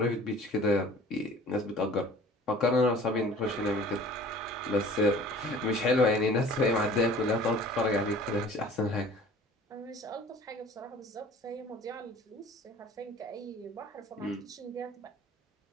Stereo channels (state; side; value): normal; both; correlation 0.47